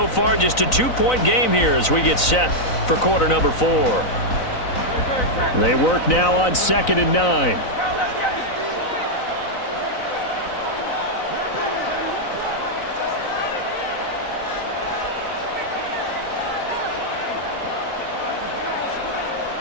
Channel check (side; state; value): right; late; 3.9 ms